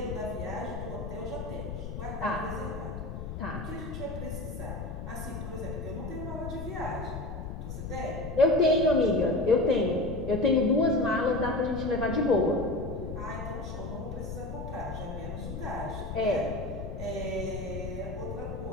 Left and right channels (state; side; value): noise; left; rumble, 7 dB below the sound